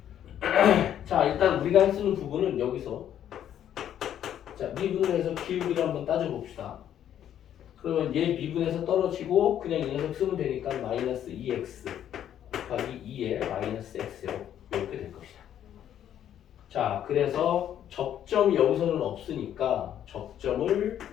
자, 일단 우리가 할 수 있는 부분은 여기서 자, 미분을 해서 기울기를 한번 따져봅시다. 그러면 얘 미분에서 떨어지고 그냥 이 녀석 쓰면 되니까 마이너스 2x 곱하기 2에 마이너스 x요. 이렇게 될 것이다. 자, 그래서 접점이 여기서는 없으니까 접점을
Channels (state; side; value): quieter; right; 10.4 dB